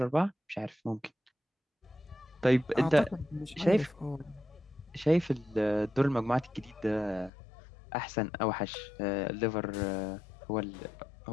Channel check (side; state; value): right; drops out; at 7.3 s